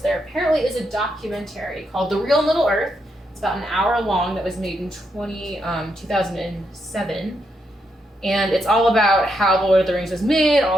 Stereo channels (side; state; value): both; normal; correlation 0.80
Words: apparently is a documentary called The Real Middle Earth. It's about an hour long that was made in 2007. And it's all about how The Lord of the Rings was made,